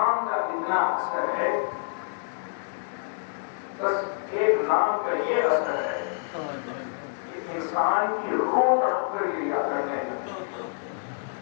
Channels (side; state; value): right; silent; digital silence